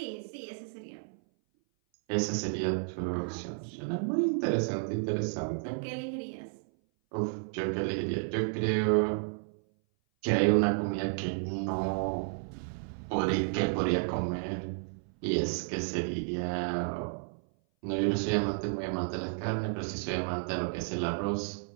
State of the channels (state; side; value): silent; left; 56 dB below the other